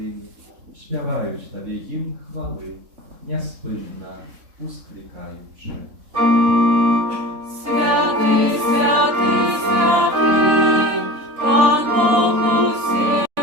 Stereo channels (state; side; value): late; left; 3.7 ms